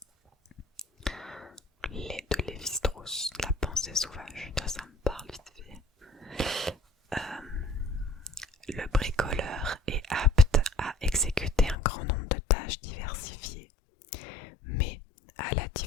De Lévi-Strauss, La pensée sauvage. Ça me parle vite fait. Le bricoleur est apte à exécuter un grand nombre de tâches diversifiées, mais à la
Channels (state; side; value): drops out; right; at 11.8 s